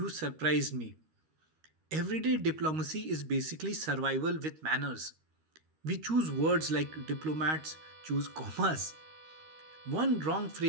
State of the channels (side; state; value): left; late; 13 ms